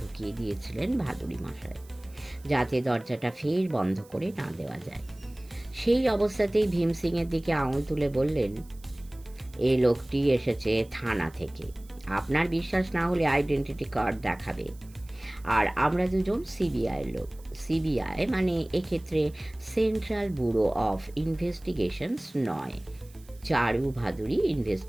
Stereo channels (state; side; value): noise; right; hiss, 26 dB below the sound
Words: দিয়েছিলেন ভাদুড়ি মশাই, যাতে দরজাটা ফের বন্ধ করে না দেওয়া যায়। সেই অবস্থাতেই ভীম সিংয়ের দিকে আঙুল তুলে বললেন, এই লোকটি এসেছে থানা থেকে। আপনার বিশ্বাস না হলে আইডেন্টিটি কার্ড দেখাবে। আর আমরা দুজন সিবিআইয়ের লোক। সিবিআই মানে এক্ষেত্রে সেন্ট্রাল ব্যুরো অফ ইনভেস্টিগেশনস নয়, চারু ভাদুড়ি